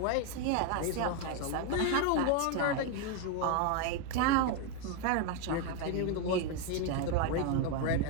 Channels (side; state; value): both; different; correlation 0.01